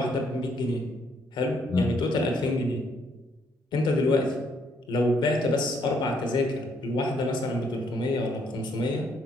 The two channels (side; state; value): both; normal; correlation 0.70